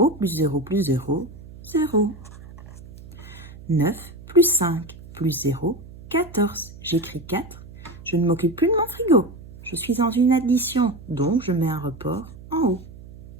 plus 0 plus 0, 0. 9 plus 5 plus 0, 14. J'écris 4. Je ne m'occupe plus de mon frigo. Je suis dans une addition, donc je mets un report en haut.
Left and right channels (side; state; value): right; noise; hum, 18 dB below the sound